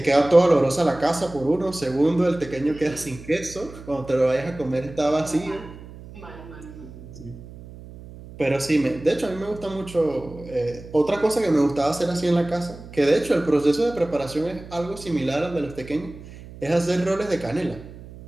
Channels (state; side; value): noise; right; hum, 16 dB below the sound